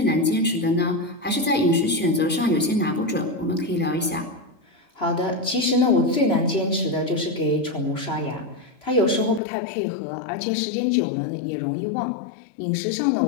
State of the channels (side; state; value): right; drops out; at 9.4 s